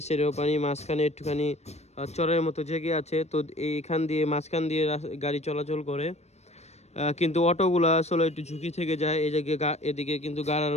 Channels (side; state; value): right; late; 0.32 ms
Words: সাইডেও পানি, মাঝখানে একটুখানি চরের মতো জেগে আছে। তো এইখান দিয়ে মাঝখান দিয়ে গাড়ি চলাচল করে, কিন্তু অটোগুলো আসলে একটু ঝুঁকি থেকে যায়। এই জায়গায় এদিকে কিন্তু গাড়া